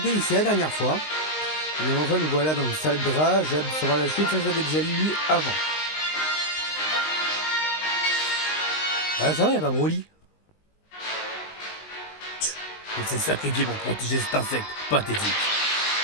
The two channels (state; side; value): late; right; 19 ms